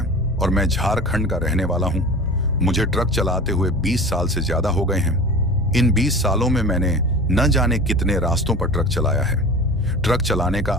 और मैं झारखंड का रहने वाला हूं। मुझे ट्रक चलाते हुए 20 साल से ज्यादा हो गए हैं। इन 20 सालों में मैंने न जाने कितने रास्तों पर ट्रक चलाया है। ट्रक चलाने का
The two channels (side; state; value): both; normal; correlation 0.36